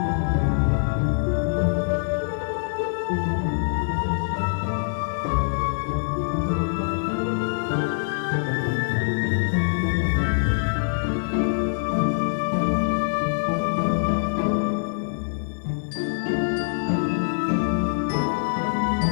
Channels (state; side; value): silent; right; digital silence